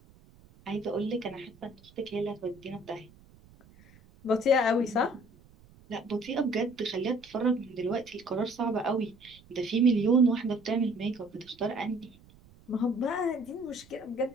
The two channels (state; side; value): noise; right; rumble, 25 dB below the sound